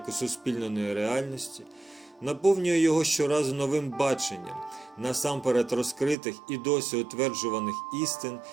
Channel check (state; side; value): drops out; left; at 6.2 s